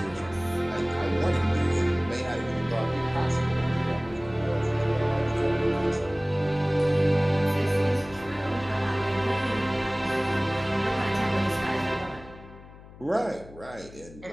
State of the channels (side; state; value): left; noise; hum, 19 dB below the sound